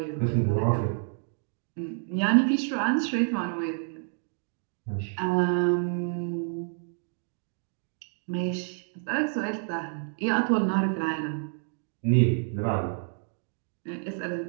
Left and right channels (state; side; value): silent; left; 59 dB below the other